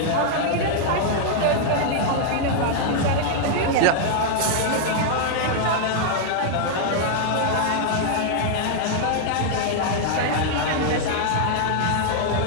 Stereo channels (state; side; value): different; both; correlation 0.00